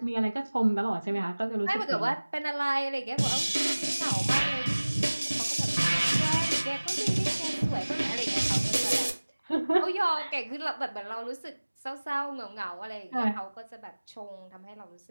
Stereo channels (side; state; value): both; inverted; correlation -1.00